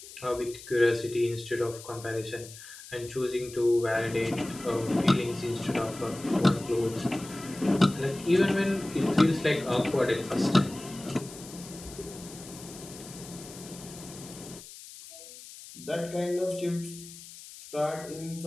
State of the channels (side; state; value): left; noise; hiss, 16 dB below the sound